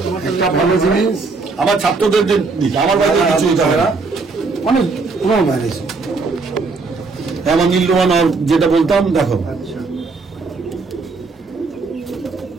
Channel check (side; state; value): left; quieter; 4.1 dB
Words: একটা ভালো জিনিস আমার ছাত্রদের দিতে, আমার বাড়ি থেকে কিছু নিতে হবে না। অনেক পুরো বাইরে আমার নীলরোহন যেটা বলতাম, দেখো আর